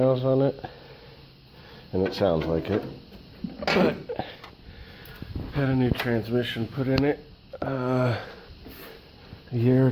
on it. And it sounds like it. But had a new transmission put in it a year or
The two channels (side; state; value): both; identical; correlation 1.00